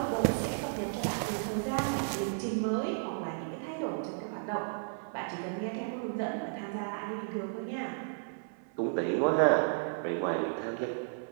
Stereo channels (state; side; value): silent; left; 55 dB below the other